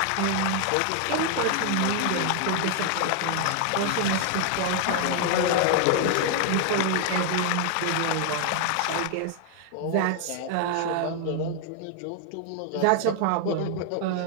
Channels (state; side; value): different; both; correlation 0.00